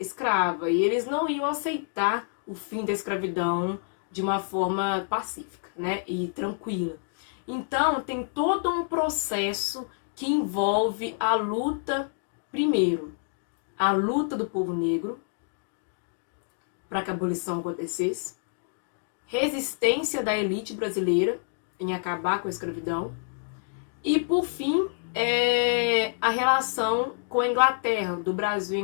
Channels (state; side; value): silent; right; digital silence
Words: E eles não iam aceitar o fim da escravidão de uma forma pacífica, né, e tranquila. Então, tem todo um processo que envolve a luta, primeiro, a luta do povo negro para que a abolição acontecesse, resistência da elite brasileira em acabar com a escravidão, e, por fim, a relação com a Inglaterra, do Brasil e